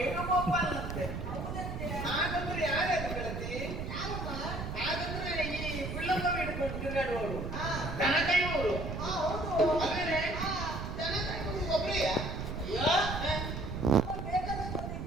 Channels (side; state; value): right; noise; rumble, 5 dB below the sound